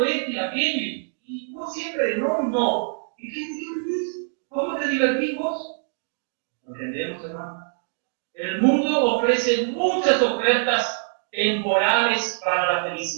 esto y aquello, y no siempre no, no. ¿Y qué es? ¿Cómo te divertís vos? ¿Entendemos, hermano? El mundo ofrece muchas ofertas temporales para la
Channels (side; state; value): left; silent; digital silence